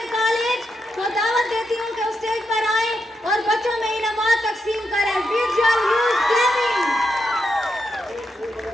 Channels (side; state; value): both; normal; correlation 0.84